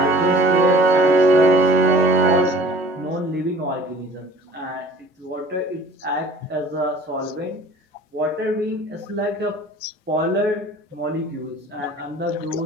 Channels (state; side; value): normal; both; correlation 0.47